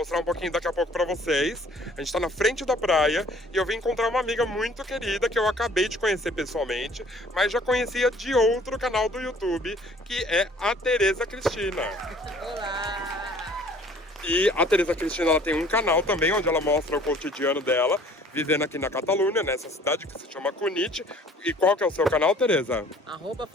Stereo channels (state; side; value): normal; both; correlation 0.54